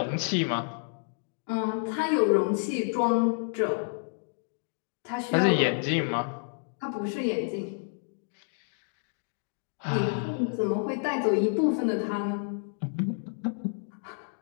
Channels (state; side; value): silent; right; digital silence